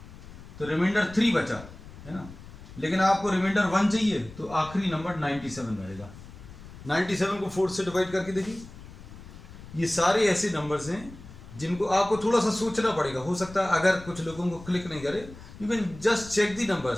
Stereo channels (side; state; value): left; noise; rumble, 17 dB below the sound